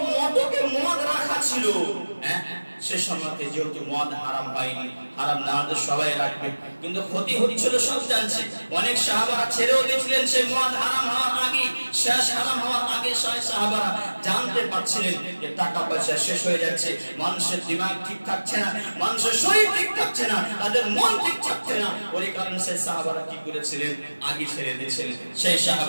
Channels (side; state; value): both; inverted; correlation -1.00